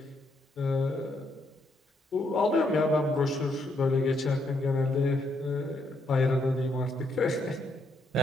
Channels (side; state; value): both; normal; correlation 0.75